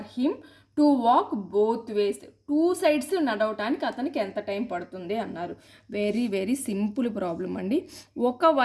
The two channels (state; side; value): identical; both; correlation 1.00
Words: him to walk both ways. 2 sides నడవటానికి అతనికి ఎంత టైం పడుతుంది అన్నారు. వెరీ సింపుల్ ప్రాబ్లం అండి.